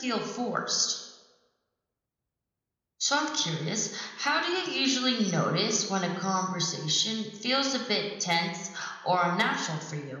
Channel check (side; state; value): both; identical; correlation 1.00